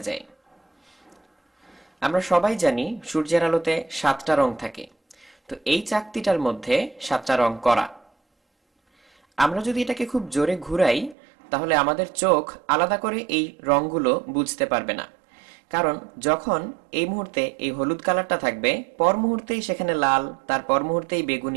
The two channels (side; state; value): left; drops out; at 11.2 s